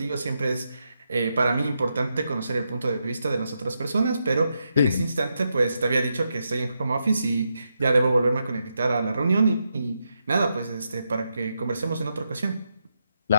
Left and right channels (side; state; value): both; inverted; correlation -0.84